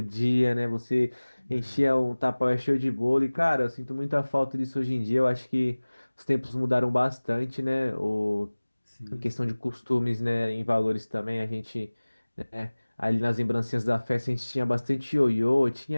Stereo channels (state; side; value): inverted; both; correlation -1.00